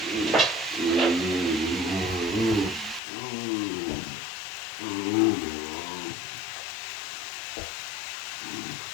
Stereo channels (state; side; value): drops out; right; at 3.0 s